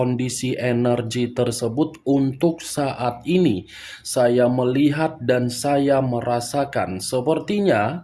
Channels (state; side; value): identical; both; correlation 1.00